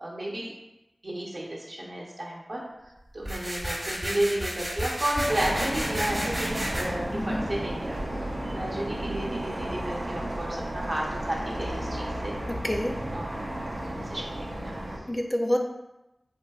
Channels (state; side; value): normal; both; correlation 0.98